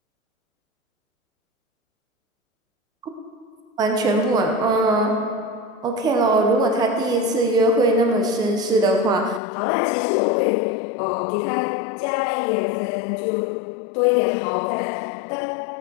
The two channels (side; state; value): right; drops out; at 9.4 s